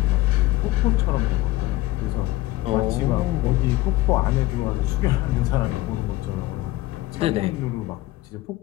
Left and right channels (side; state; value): right; quieter; 17.4 dB